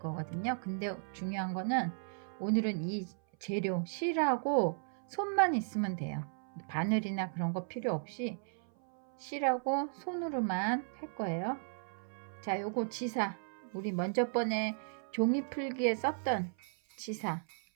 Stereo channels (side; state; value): left; silent; 54 dB below the other